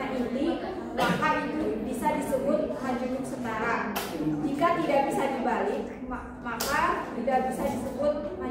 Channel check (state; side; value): identical; both; correlation 1.00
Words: inti, maka itu bisa disebut majemuk setara. Jika tidak bisa dibalik, maka tidak bisa disebut